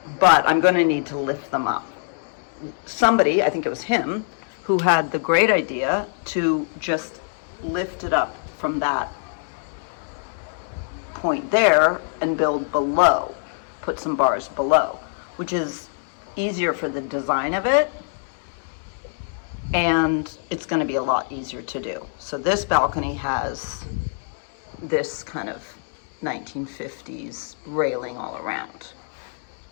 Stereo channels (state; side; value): silent; right; digital silence